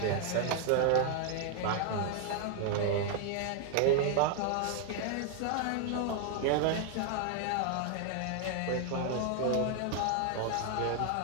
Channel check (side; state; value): both; different; correlation 0.00